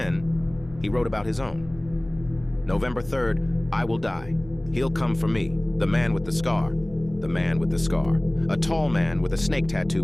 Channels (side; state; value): left; noise; hum, 19 dB below the sound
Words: he wrote about his own. November 3rd, I will die. He'll come for me, the man with the scar. The man with the scar. A tall man with a snake tattoo